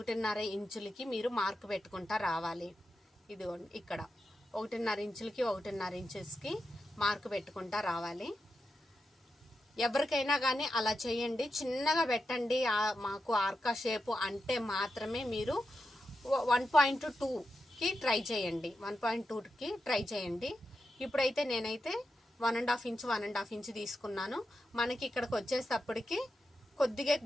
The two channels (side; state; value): both; normal; correlation 0.88